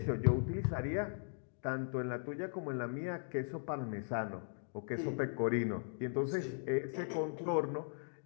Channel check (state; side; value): silent; right; digital silence